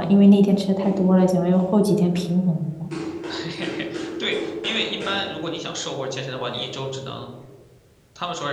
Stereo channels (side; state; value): both; identical; correlation 1.00